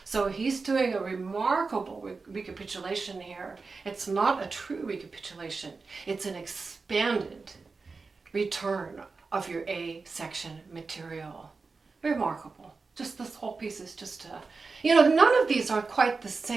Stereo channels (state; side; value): quieter; left; 4.3 dB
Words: So he's doing a remarkable recapitulation here. It's not a true recapitulation. It's an expanded return of your A section material. Remarkable. Just this whole piece is just, none of these are quite the